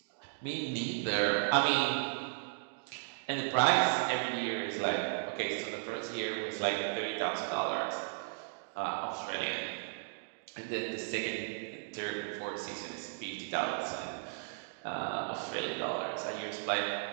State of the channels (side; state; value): left; silent; digital silence